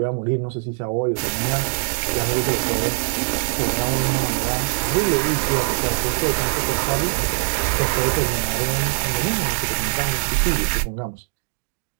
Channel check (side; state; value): left; silent; 63 dB below the other